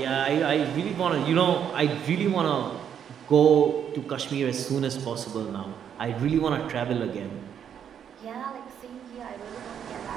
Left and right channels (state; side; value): quieter; left; 8.6 dB